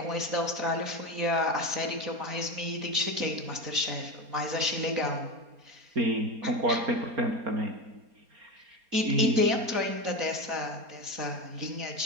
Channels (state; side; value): late; left; 4.3 ms